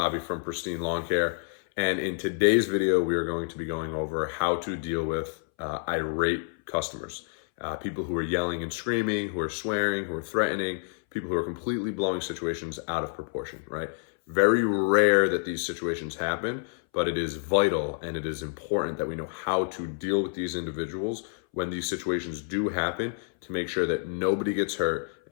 from Pristine Lawn Care. And in today's video, we are going to be going over how to deal with irate customers. People who are yelling and screaming, who are swearing, who are threatening, people who are completely blowing situations out of proportion, right? Very rare that these situations happen, but it is vital and it is important that we know how to deal with these individuals when these situations do happen to make sure that nobody gets hurt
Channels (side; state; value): right; silent; 59 dB below the other